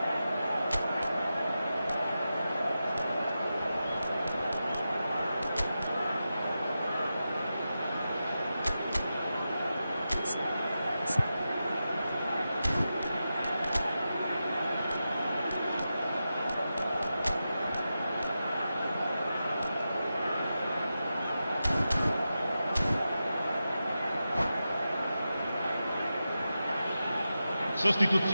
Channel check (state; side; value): inverted; both; correlation -0.91